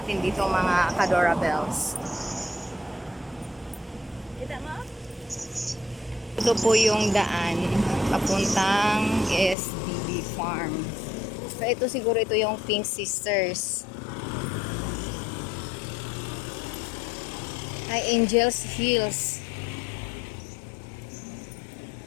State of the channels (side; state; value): right; drops out; at 9.6 s